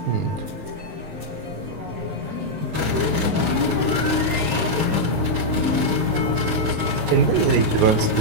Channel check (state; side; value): late; left; 19 ms